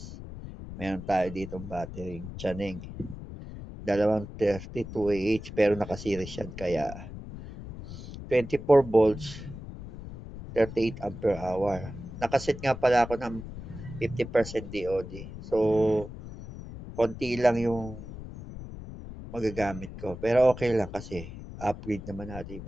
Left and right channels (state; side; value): noise; left; rumble, 12 dB below the sound